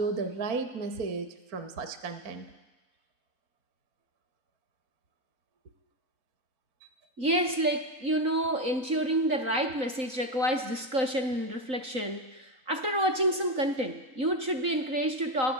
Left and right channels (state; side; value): late; left; 3.8 ms